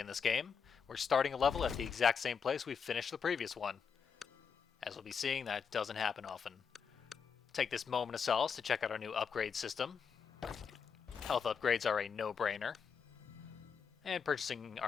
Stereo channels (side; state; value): right; quieter; 6.4 dB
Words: in this game. We're starting a level at the exact same place we finished the previous one. As we'll be seeing, that doesn't happen often. Take this moment of solace to check out our new upgrade system. Health upgrades are a no-brainer. And purchasing